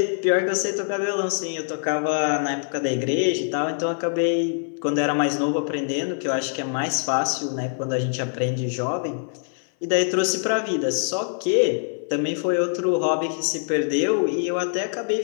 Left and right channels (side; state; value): right; silent; 58 dB below the other